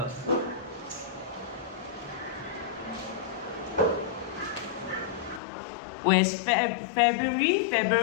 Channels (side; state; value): right; drops out; at 5.4 s